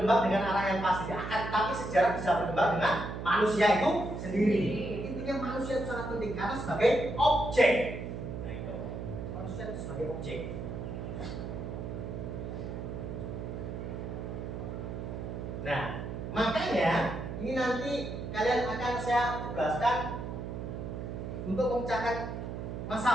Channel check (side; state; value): right; noise; hum, 6 dB below the sound